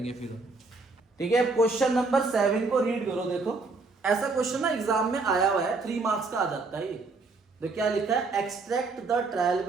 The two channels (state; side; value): quieter; left; 3.8 dB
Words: फिर। ठीक है, क्वेश्चन नंबर 7 को रीड करो। देखो, ऐसा क्वेश्चन ना एग्जाम में आया हुआ है, 3 मार्क्स का आ जाता है ये। तो क्या लिखा है? Extract the trial